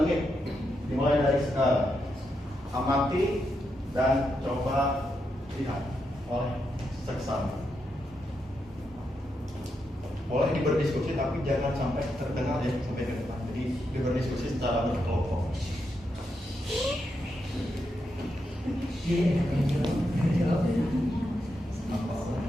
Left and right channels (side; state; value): both; normal; correlation 0.83